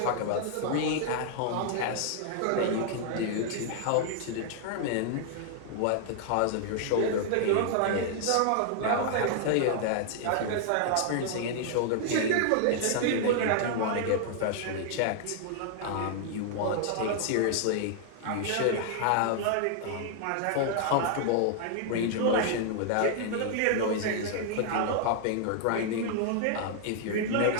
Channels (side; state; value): both; different; correlation 0.00